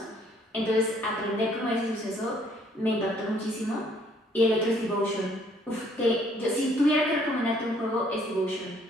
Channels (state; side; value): normal; both; correlation 0.63